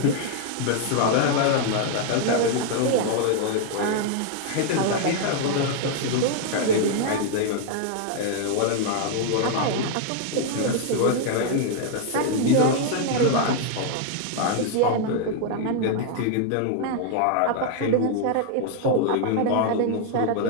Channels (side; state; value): both; different; correlation 0.00